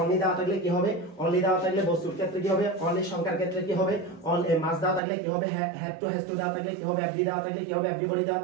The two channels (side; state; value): left; drops out; at 5.0 s